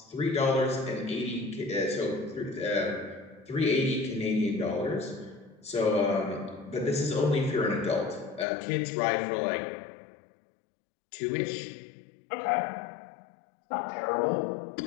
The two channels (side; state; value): right; drops out; at 8.5 s